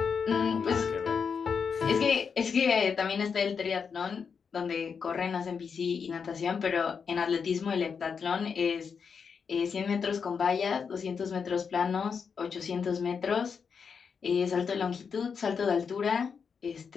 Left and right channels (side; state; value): right; quieter; 6.1 dB